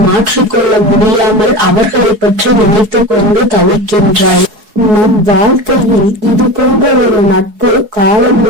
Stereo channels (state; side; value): late; left; 4.7 ms